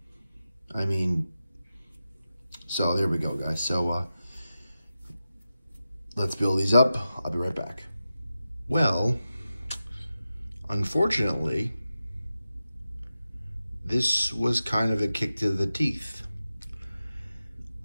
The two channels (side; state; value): both; inverted; correlation -0.92